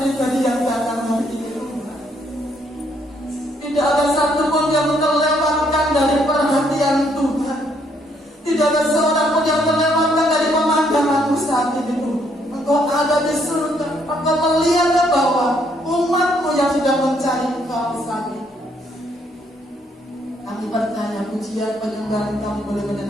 yang datang hari ini Tuhan. Tidak ada satu pun yang terlewatkan dari perhatian Tuhan. Tidak ada seorang pun yang terlewatkan dari pemandangan saat ini Tuhan. Engkau ada di surga. Engkau melihat ke bawah umat-Mu yang sudah mencari Engkau saat ini. Kami percaya pujian penyembahan kami boleh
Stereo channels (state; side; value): normal; both; correlation 0.70